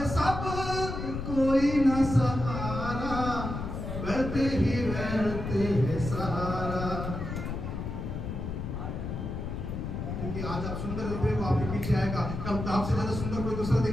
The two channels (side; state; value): left; noise; rumble, 5 dB below the sound